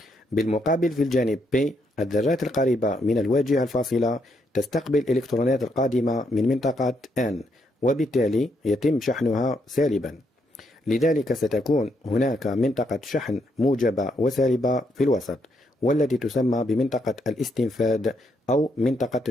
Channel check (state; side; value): normal; both; correlation 0.76